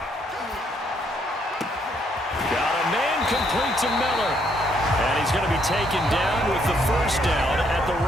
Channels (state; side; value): normal; both; correlation 0.71